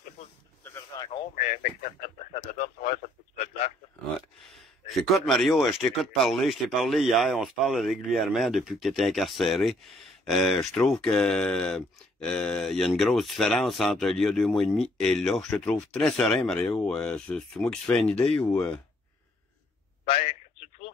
c'est pas une version encore, mais ça te donne, ça te coûte de place. Ouais. J'écoute, Mario, je t'écoute parler, je t'ai parlé hier, on se parle régulièrement depuis que tu étais incarcéré. Je trouve que il y a une grosse différence entre il y a 2 mois et demi et là. Je te trouve très serein, Mario. C'est moi qui se fais une idée ou... Ben, tu te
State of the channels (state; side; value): normal; both; correlation 0.65